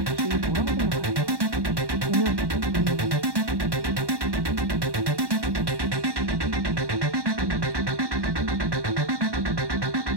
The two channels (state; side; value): late; left; 1.1 ms